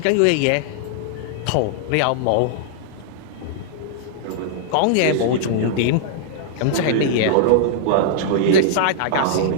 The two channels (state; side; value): different; both; correlation -0.01